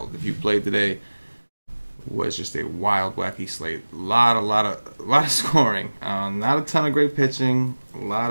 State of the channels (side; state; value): both; inverted; correlation -1.00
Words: If you played today, it was just a wild, wacky slate. A lot of scoring. Not a ton of great pitching. A lot